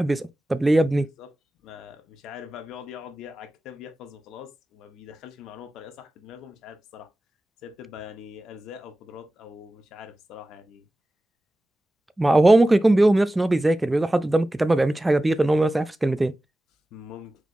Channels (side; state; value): both; normal; correlation 0.95